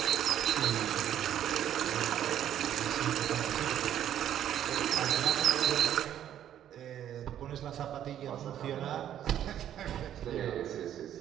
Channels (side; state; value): left; quieter; 10.7 dB